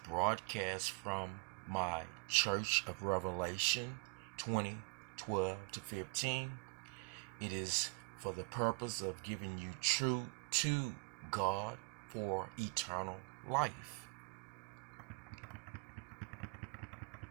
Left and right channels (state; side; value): quieter; left; 36.9 dB